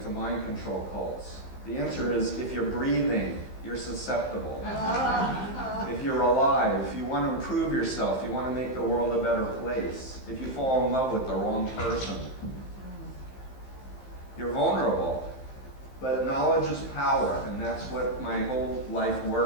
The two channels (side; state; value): right; late; 15 ms